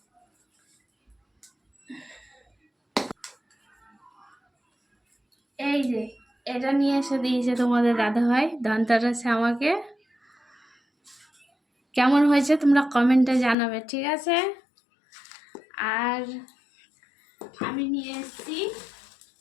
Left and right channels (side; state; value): right; drops out; at 13.6 s